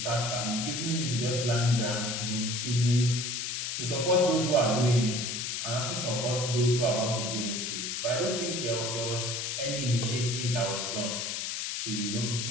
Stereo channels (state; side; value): noise; left; hiss, 3 dB below the sound